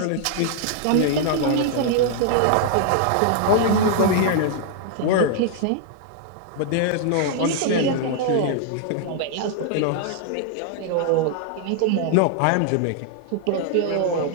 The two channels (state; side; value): different; both; correlation 0.00